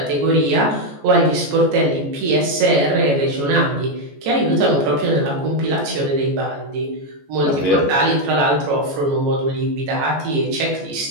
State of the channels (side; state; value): left; late; 14 ms